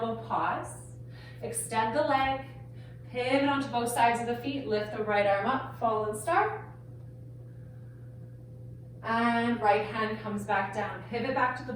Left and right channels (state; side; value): identical; both; correlation 1.00